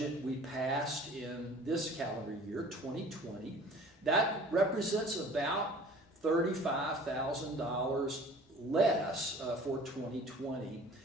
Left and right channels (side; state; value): both; normal; correlation 0.47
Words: we passed in this calendar year, 2020. That represents about $35,000 less for 2020.